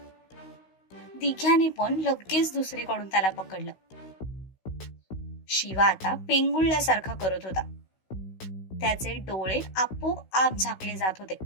दिघ्याने पण लगेच दुसरीकडून त्याला पकडलं. शिवा आता पेंगुळल्यासारखा करत होता. त्याचे डोळे आपोआप झाकले जात होते.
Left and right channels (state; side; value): late; right; 16 ms